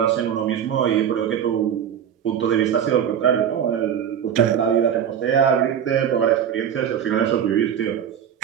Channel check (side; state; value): left; quieter; 8.9 dB